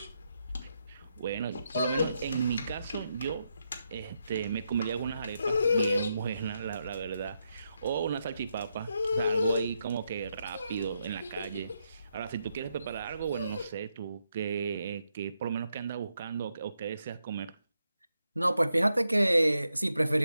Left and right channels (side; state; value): both; inverted; correlation -0.82